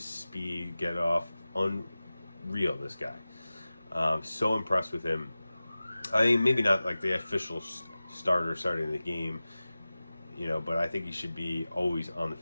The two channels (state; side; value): inverted; both; correlation -0.96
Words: speed, get off, unreal, this guy. So impressed with him. I mean, maybe not like the official starter starting the game, but I think he should be always on the